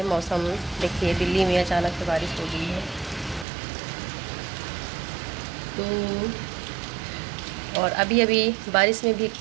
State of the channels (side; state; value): left; drops out; at 3.5 s